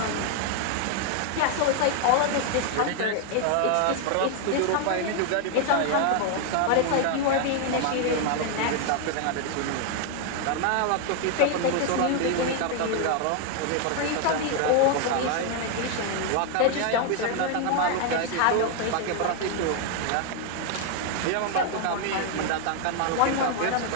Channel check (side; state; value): both; different; correlation 0.00